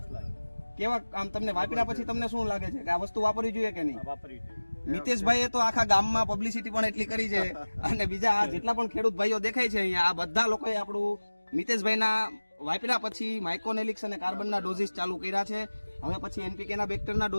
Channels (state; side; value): inverted; both; correlation -1.00